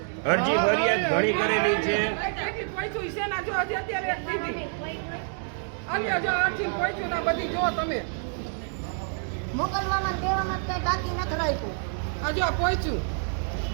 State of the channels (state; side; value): silent; left; 60 dB below the other